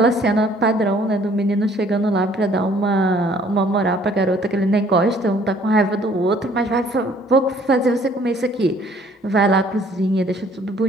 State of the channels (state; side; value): normal; both; correlation 0.58